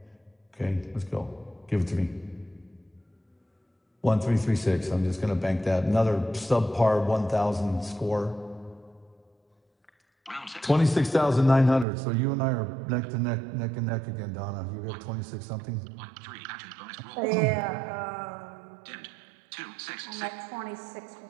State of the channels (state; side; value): drops out; left; at 11.9 s